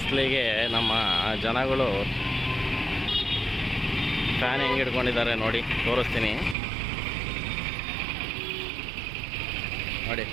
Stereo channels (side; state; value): left; drops out; at 6.6 s